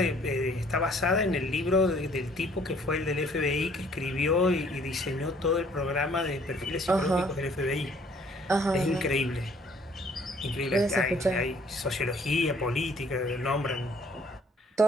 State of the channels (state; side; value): normal; both; correlation 0.59